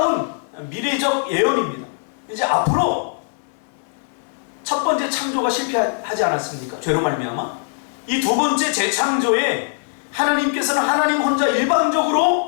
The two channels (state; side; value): silent; right; 59 dB below the other